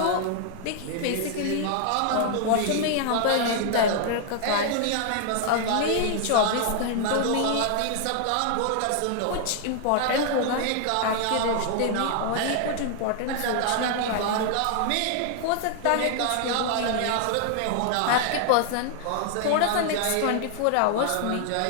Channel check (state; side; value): different; both; correlation 0.00